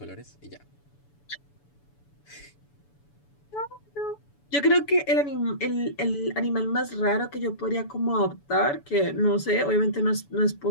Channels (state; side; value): late; right; 7.0 ms